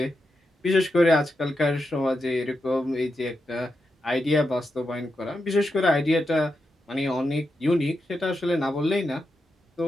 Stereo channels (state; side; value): normal; both; correlation 0.87